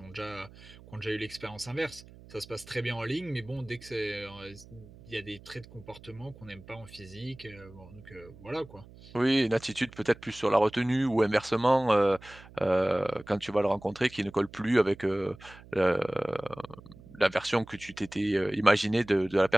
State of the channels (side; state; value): right; noise; hum, 20 dB below the sound